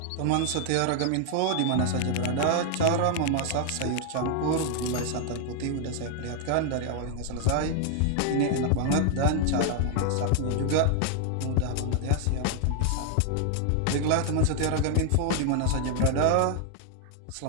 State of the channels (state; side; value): different; both; correlation 0.00